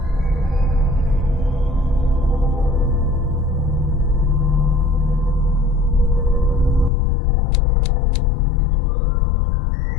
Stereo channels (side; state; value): right; drops out; at 6.9 s